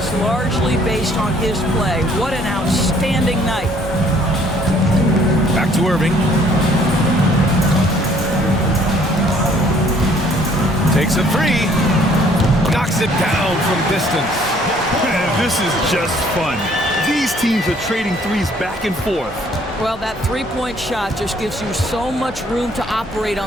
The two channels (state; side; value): normal; both; correlation 0.60